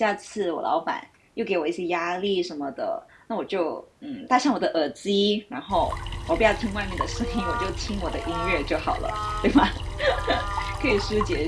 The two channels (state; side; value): identical; both; correlation 1.00